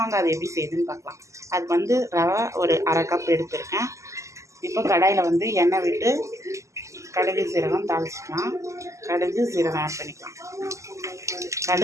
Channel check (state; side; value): late; left; 0.15 ms